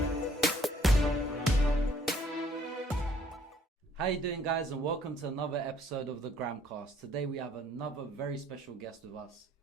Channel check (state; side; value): normal; both; correlation 0.62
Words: How you doing, guys, and welcome to another episode of the Gramcast. Today we have another very special guest with us.